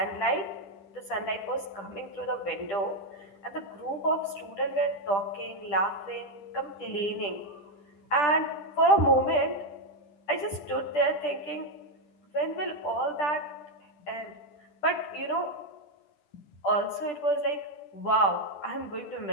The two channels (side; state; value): right; late; 10 ms